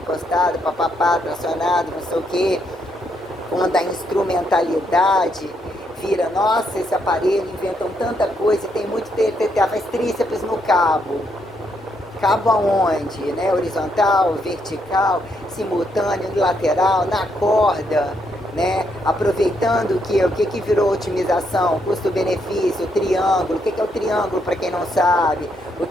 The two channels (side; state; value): both; normal; correlation 0.76